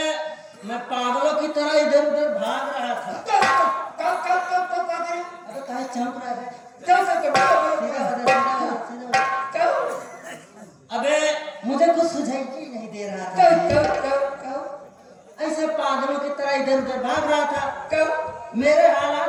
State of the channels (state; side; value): identical; both; correlation 1.00